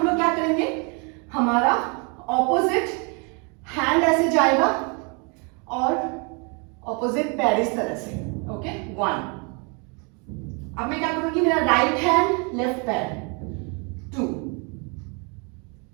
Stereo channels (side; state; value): left; quieter; 34.0 dB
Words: लोग क्या करेंगे, हमारा ऑपोजिट हैंड ऐसे जाएगा और ऑपोजिट पैर इस तरह से। ओके, 1। अब मैं क्या करूंगी, मेरा राइट हैंड लेफ्ट पैर। 2,